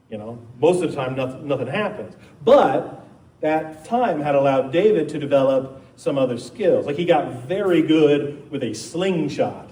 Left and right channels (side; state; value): both; identical; correlation 1.00